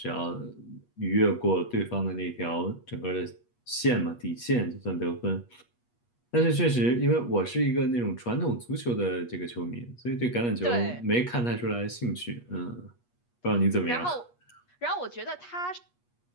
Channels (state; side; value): late; right; 8.3 ms